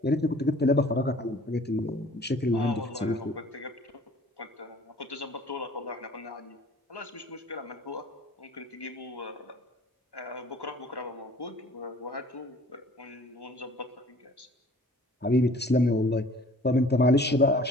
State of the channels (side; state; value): both; normal; correlation 0.51